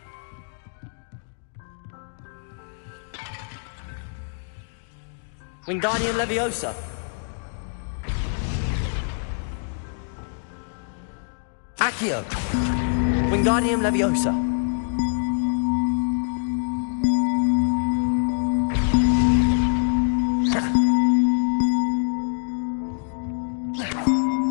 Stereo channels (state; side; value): silent; right; digital silence